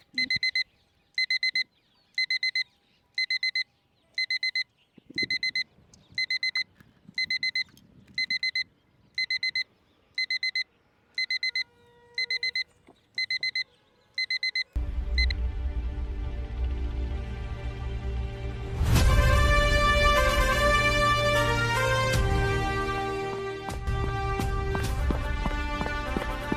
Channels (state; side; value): identical; both; correlation 1.00